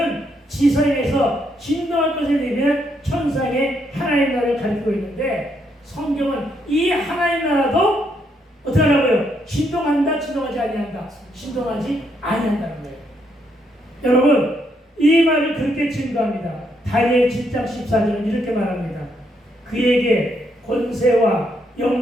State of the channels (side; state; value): both; normal; correlation 0.75